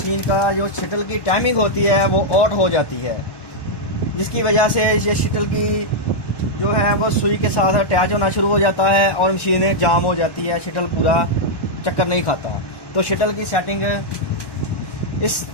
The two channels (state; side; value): late; right; 1.1 ms